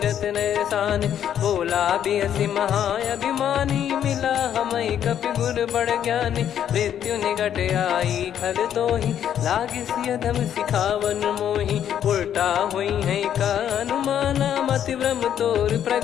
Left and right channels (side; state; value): right; quieter; 9.8 dB